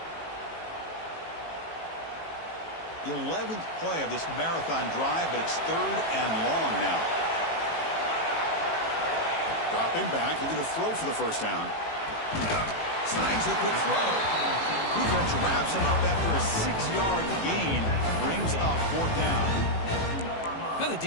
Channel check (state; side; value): late; right; 18 ms